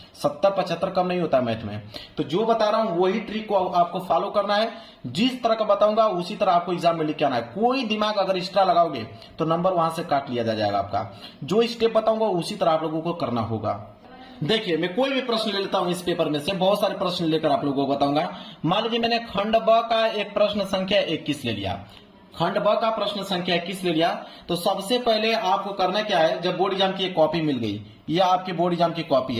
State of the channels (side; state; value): both; identical; correlation 1.00